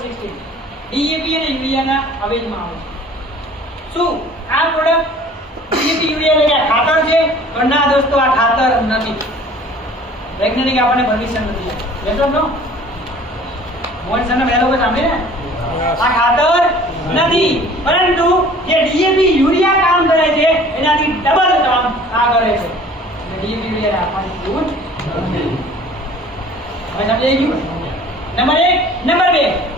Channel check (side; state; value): both; normal; correlation 0.49